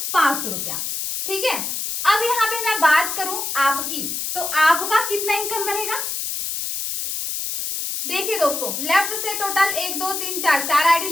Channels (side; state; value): left; noise; hiss, 3 dB below the sound